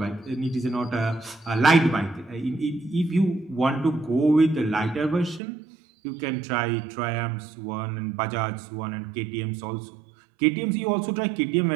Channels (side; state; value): left; drops out; at 5.4 s